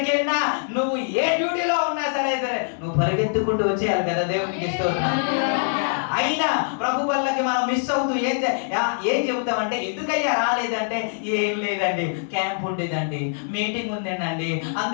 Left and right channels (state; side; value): silent; right; digital silence